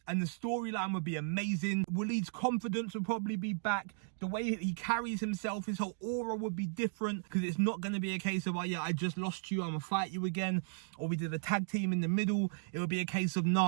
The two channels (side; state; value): left; silent; digital silence